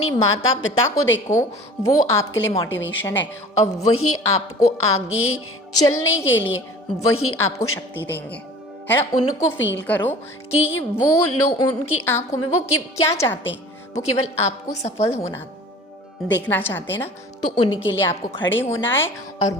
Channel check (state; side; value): normal; both; correlation 0.43